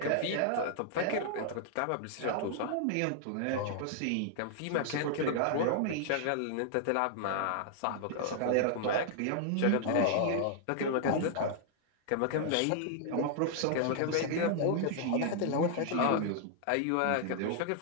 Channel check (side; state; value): both; different; correlation -0.01